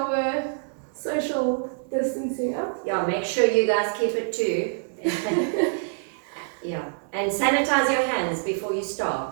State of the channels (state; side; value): silent; left; 57 dB below the other